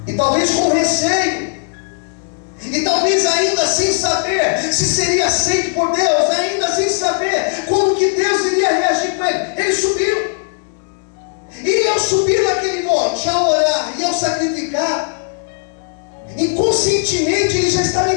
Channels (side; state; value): right; silent; digital silence